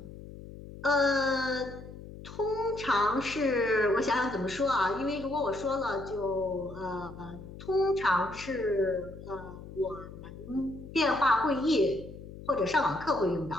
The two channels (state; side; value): noise; left; hum, 14 dB below the sound